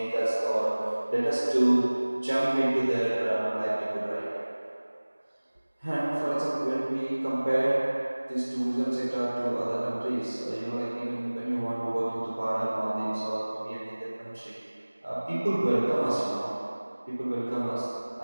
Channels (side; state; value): both; inverted; correlation -1.00